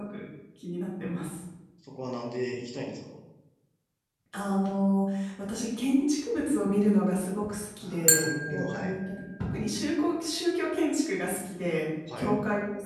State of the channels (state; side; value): identical; both; correlation 1.00